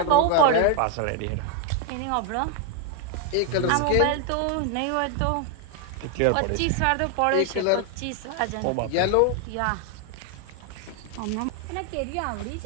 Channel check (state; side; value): different; both; correlation 0.00